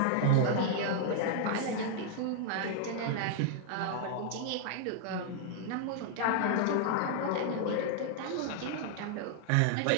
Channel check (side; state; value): both; different; correlation -0.01